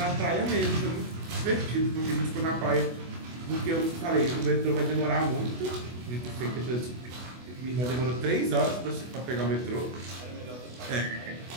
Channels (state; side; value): late; left; 24 ms